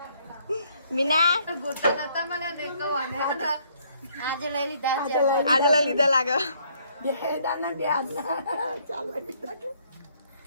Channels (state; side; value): inverted; both; correlation -0.66